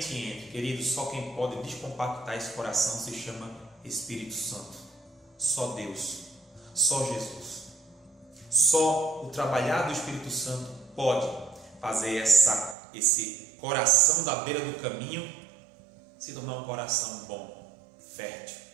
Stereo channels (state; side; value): drops out; left; at 12.8 s